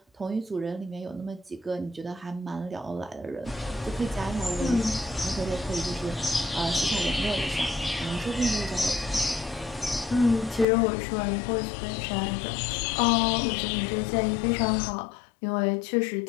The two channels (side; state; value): right; drops out; at 10.7 s